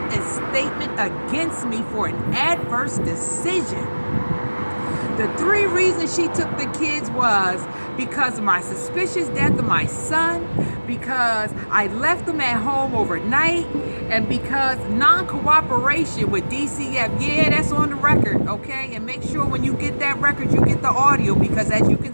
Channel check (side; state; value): both; inverted; correlation -1.00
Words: statement against me for an adverse decision. The three reasons she took the kids was because of my suspicious death of my son, because I left them at home overnight, and because non-cooperation with DCF. Yeah, that's on the record, okay? And make sure when you get that record, you get the audio, because as you can